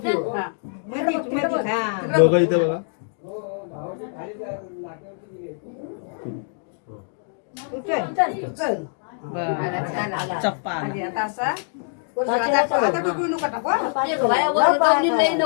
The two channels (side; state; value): right; silent; digital silence